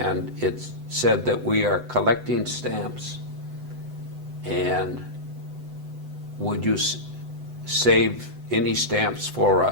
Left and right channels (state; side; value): late; left; 7.9 ms